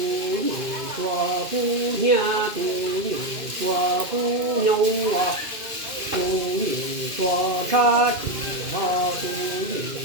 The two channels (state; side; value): late; left; 2.6 ms